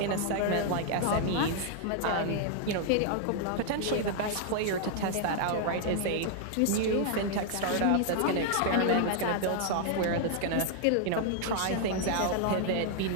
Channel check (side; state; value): both; different; correlation 0.00